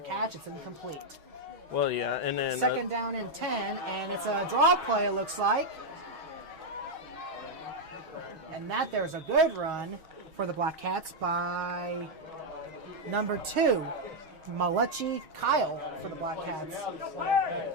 catch, it's incomplete. Well, yeah, and then 2nd down and 10, and it's a draw play, it looks like. And there's a good run for the Black Cats by number 2, Malachi Kyle for the Black Cats.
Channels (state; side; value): late; left; 6.3 ms